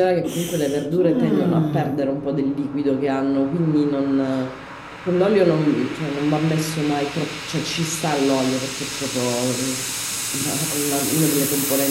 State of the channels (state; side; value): identical; both; correlation 1.00